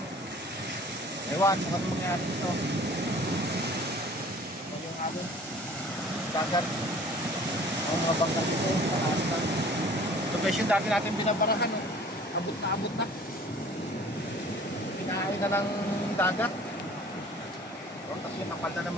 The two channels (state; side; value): normal; both; correlation 0.49